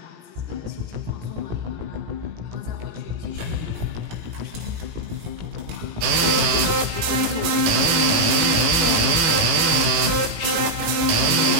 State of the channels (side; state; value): left; late; 18 ms